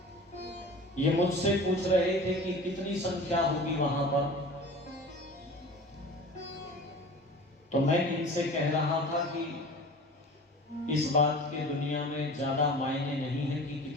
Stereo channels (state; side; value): normal; both; correlation 0.39